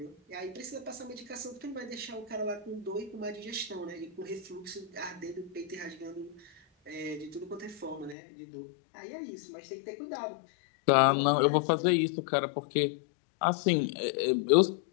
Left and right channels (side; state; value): right; drops out; at 8.2 s